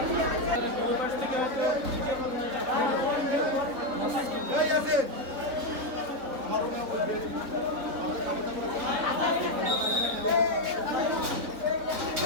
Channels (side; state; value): left; late; 3.7 ms